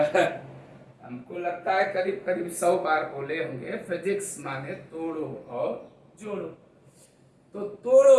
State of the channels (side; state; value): both; identical; correlation 1.00